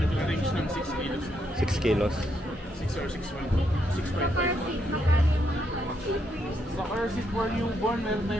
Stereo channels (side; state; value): both; normal; correlation 0.77